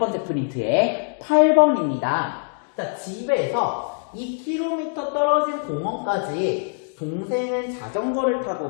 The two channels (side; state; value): right; silent; digital silence